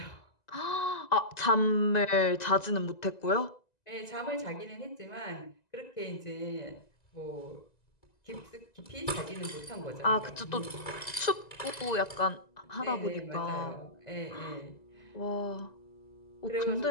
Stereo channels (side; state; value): right; late; 1.9 ms